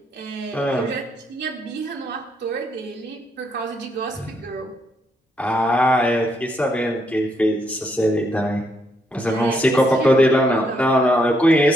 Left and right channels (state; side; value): normal; both; correlation 0.75